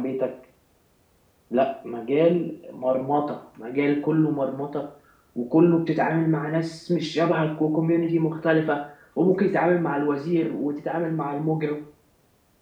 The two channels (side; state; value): both; identical; correlation 1.00